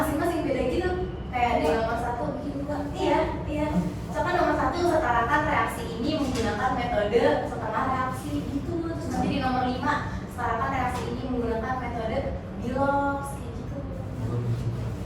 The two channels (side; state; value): both; identical; correlation 1.00